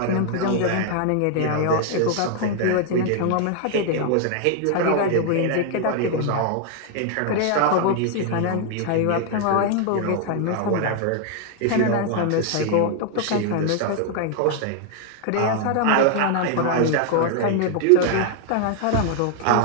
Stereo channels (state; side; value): different; both; correlation 0.00